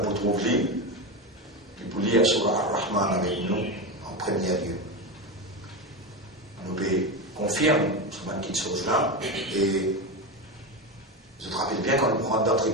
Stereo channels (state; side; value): normal; both; correlation 0.17